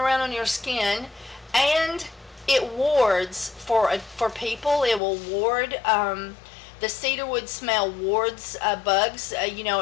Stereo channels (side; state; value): right; drops out; at 5.0 s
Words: on your skin. And it wards for people. It will ward, the cedarwood smell wards bugs.